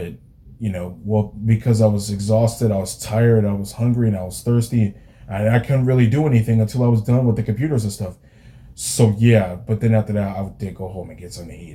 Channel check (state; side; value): identical; both; correlation 1.00